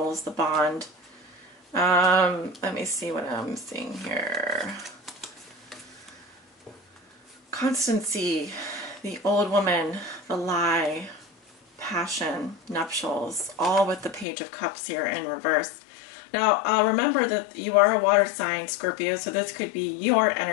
the bond. Let me see what I'm seeing here. Constancy, the old woman, the lie, passion, nuptials, all with the Page of Cups here in reverse. Now, remember that you are a water sign, Scorpio, so this could be your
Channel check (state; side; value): drops out; right; at 14.2 s